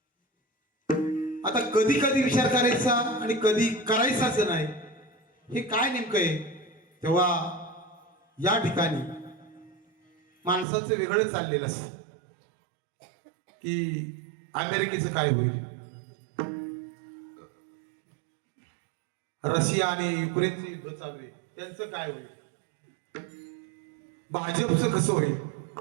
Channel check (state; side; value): drops out; left; at 10.7 s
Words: आता कधी कधी विचार करायचा आणि कधी करायचाच नाही हे काय नेमकं आहे. तेव्हा या ठिकाणी माणसाचं वेगळं चाललेलं असतं की अमेरिकेचं काय होईल, रशिया आणि युक्रेनचे युद्ध चालू आहे त्यांचं काय होईल, भाजपचं कसं होईल,